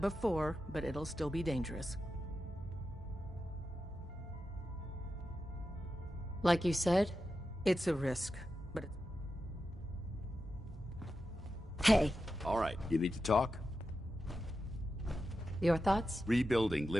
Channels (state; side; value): normal; both; correlation 0.90